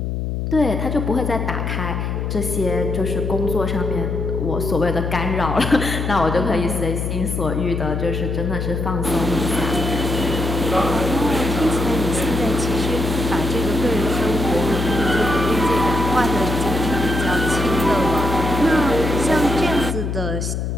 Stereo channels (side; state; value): left; noise; hum, 2 dB below the sound